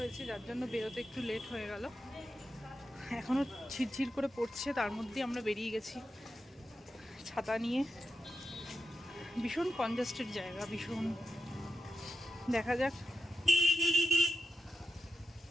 যার জন্য বেরোতে একটু লেট হয়ে গেল। এখনও ঝিরঝির করে পড়ছে, তার মধ্যেই আমরা বেরিয়ে গেছি ছাতা নিয়ে। ভীষণ কনজাস্টেড জায়গা, ভীষণ। দেখা যাক।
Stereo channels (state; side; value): normal; both; correlation 0.87